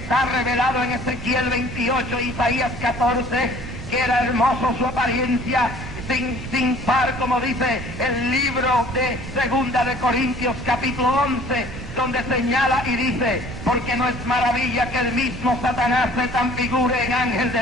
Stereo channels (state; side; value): noise; right; rumble, 11 dB below the sound